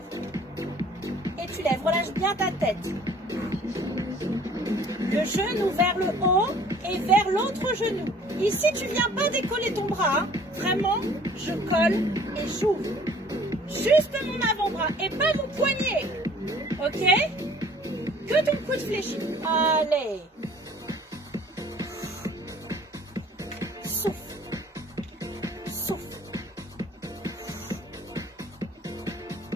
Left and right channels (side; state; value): both; normal; correlation 0.53